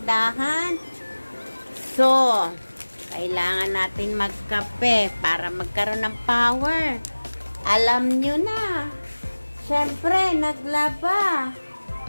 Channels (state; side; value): inverted; both; correlation -1.00